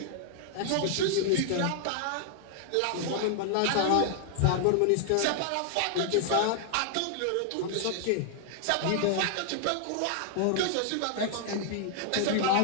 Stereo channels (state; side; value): different; both; correlation -0.01